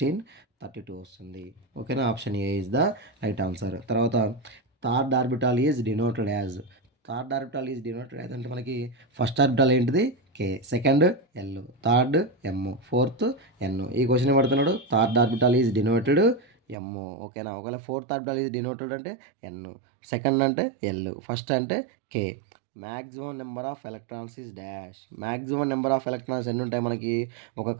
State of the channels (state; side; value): drops out; left; at 16.8 s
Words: 32 వస్తుంది. ఓకేనా? Option A is the right answer. తర్వాత third orbital is denoted as. Third orbital is denoted as అంటే మనకి ఫస్ట్ ఆర్బిటాల్ ఏంటిది? K, second L, third M, fourth N. ఈ క్వశ్చన్ పడుతున్నాడు third orbital is denoted M. ఓకేనా? ఒకవేళ ఫోర్త్ ఆర్బిటాల్ ఈజ్ డినోటెడ్ అంటే N, సెకండ్ అంటే L, ఫస్ట్ అంటే K. Maximum number of electrons is dash. Maximum number of electrons ఎన్ని ఉంటాయి మనకి? ఒక